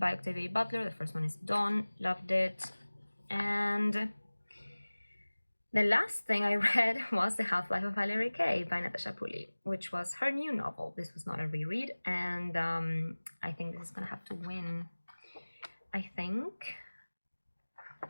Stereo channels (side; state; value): both; inverted; correlation -1.00